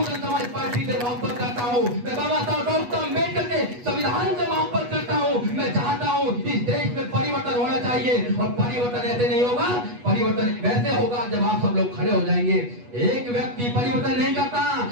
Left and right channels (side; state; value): left; late; 8.2 ms